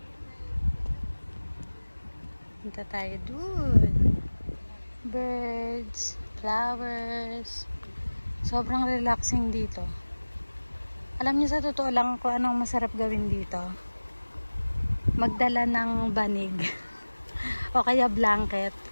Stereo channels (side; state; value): both; inverted; correlation -1.00